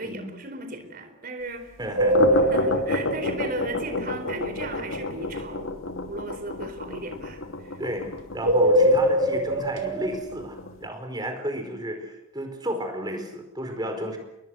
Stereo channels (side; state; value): both; normal; correlation -0.07